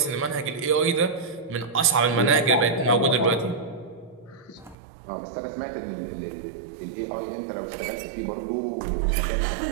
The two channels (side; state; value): left; drops out; at 4.8 s